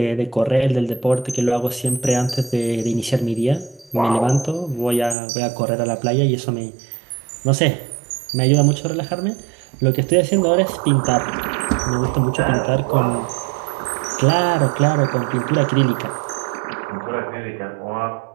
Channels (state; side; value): drops out; left; at 5.2 s